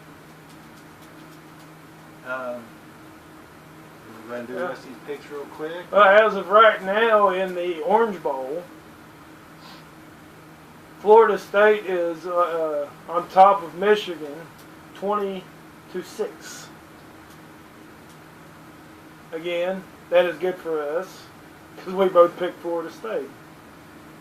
We're going to do the rest of these picks real quick. As of right now, in the Orange Bowl, Florida State is on top of Michigan, 20-6. Again, that is good for us because we both picked Florida State.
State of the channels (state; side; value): identical; both; correlation 1.00